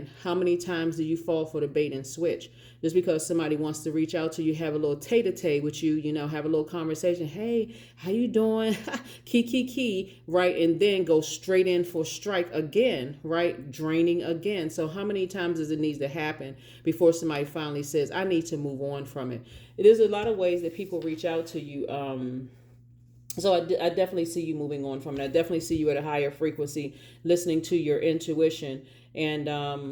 How many times do you fall for the bait and switch? Just because somebody wants to reach out to you, have a little tete-a-tete with you, have a little conversation. Hey, how you doing? Key, right? And then go straight in for strike again, right? Draining again. So how many times does it need to happen before somebody finally says, I need to move on from it? There's a lot of ways that people reach out to you. So I definitely see you moving on from it. I definitely see you at a higher frequency, listening to your intuition, and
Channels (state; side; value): identical; both; correlation 1.00